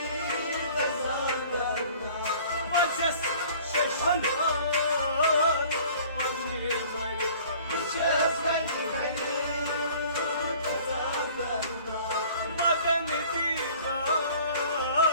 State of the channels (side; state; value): both; inverted; correlation -0.50